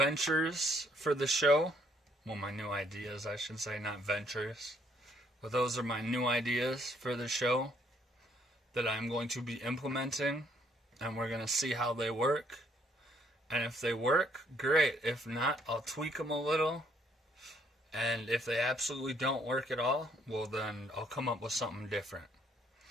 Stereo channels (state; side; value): normal; both; correlation 0.67